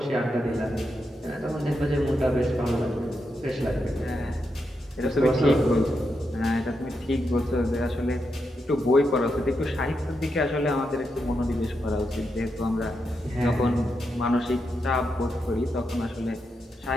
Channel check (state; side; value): normal; both; correlation 0.84